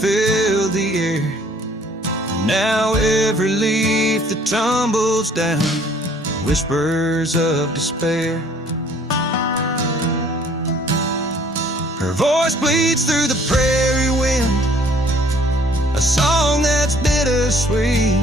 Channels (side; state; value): both; normal; correlation 0.57